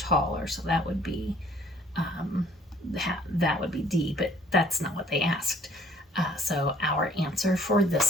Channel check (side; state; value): both; normal; correlation 0.59